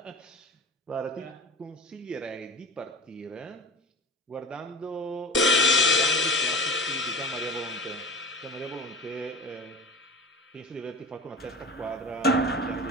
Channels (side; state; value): both; normal; correlation 0.33